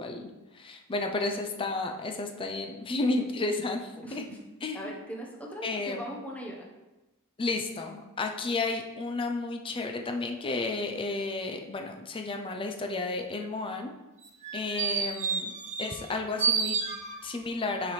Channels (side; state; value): both; normal; correlation 0.20